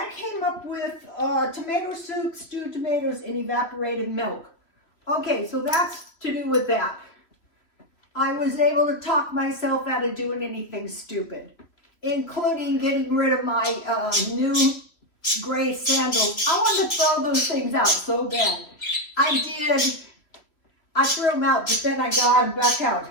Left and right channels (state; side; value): late; right; 3.1 ms